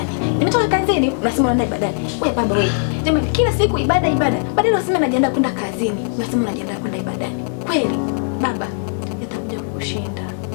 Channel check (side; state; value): right; silent; 66 dB below the other